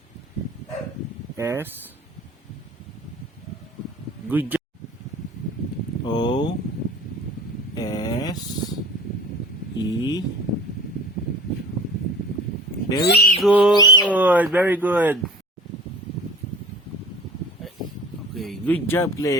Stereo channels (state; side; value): normal; both; correlation 0.43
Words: S. Good job. O. S. E. Very good. Very good. Okay. Good job,